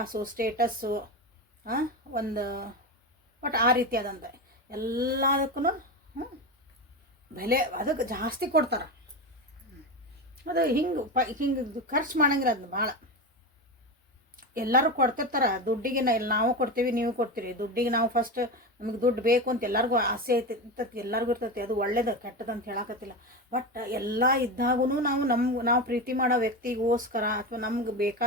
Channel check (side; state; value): both; normal; correlation 0.20